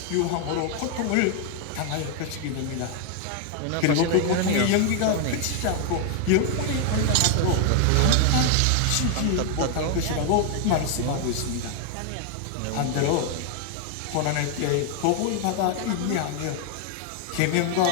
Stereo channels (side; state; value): both; different; correlation 0.01